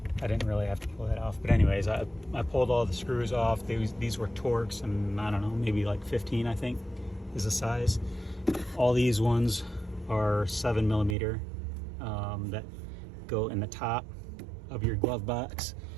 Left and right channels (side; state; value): left; drops out; at 11.2 s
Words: I didn't really have to pull that off, but anyways, I pulled all the screws off. These were Torx, and I don't know, maybe like 15, I think is the size. All these ones are 7mm that go in the top of your glove box.